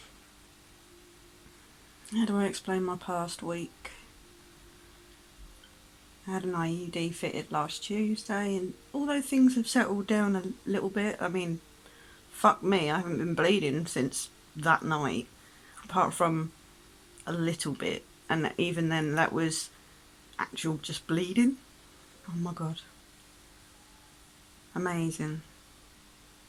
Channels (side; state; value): both; identical; correlation 1.00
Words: How do I explain my past week? I had an IUD fitted last Tuesday, and although things have settled down a little bit, I mean, fuck me, I haven't been bleeding since that night, apart from a little bit, and even then that was actual just bleeding. Oh my god. Amazing.